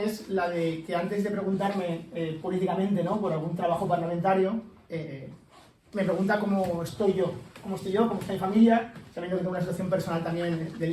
la de que antes de preguntarme políticamente, ¿no?, por algún trabajo parlamentario, me pregunta cómo estoy yo, cómo está mi familia, sabiendo que tengo una situación personal también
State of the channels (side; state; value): both; identical; correlation 1.00